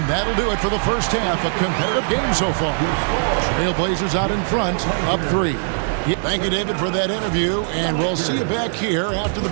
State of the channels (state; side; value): silent; left; digital silence